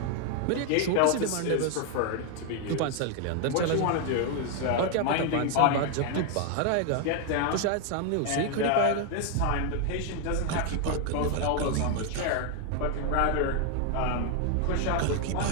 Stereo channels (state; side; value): different; both; correlation 0.01